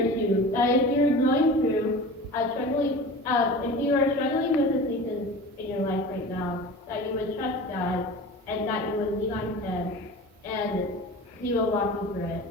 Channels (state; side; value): normal; both; correlation 0.35